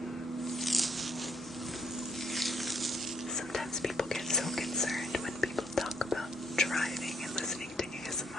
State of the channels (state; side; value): normal; both; correlation 0.71